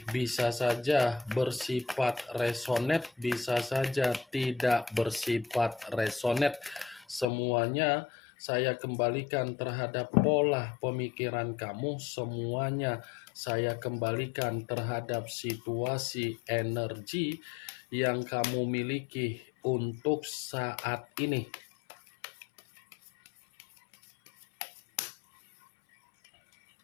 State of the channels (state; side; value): drops out; right; at 7.2 s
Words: bisa saja bersifat resonate, bisa saja tidak bersifat resonate. Semuanya saya kembalikan terhadap pola pemikiran kamu, semuanya saya kembalikan terhadap situasi energi yang kamu miliki untuk saat ini.